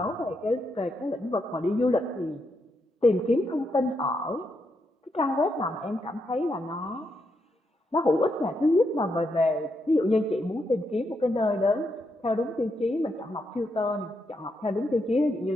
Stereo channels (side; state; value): both; normal; correlation 0.81